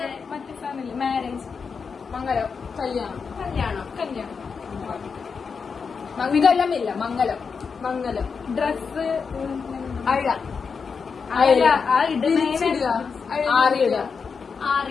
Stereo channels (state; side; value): quieter; right; 5.6 dB